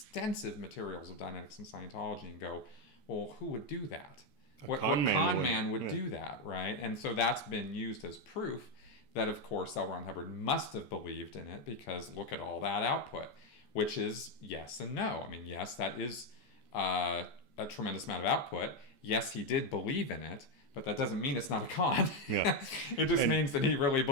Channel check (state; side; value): late; right; 14 ms